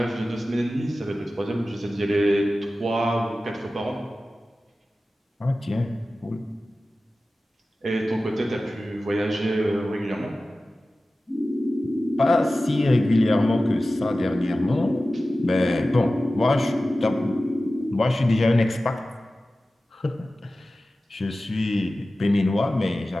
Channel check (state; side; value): normal; both; correlation 0.95